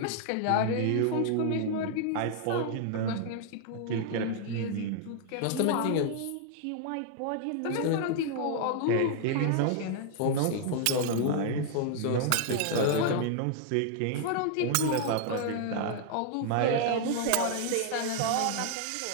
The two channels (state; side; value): different; both; correlation 0.00